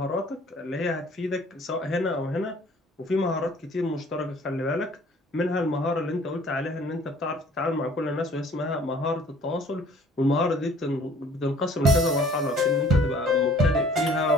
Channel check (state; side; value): normal; both; correlation 0.54